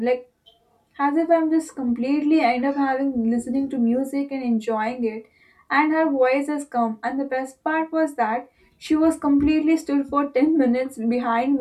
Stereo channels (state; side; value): identical; both; correlation 1.00